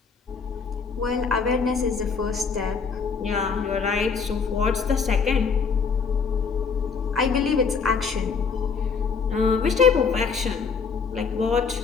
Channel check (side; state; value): right; quieter; 5.5 dB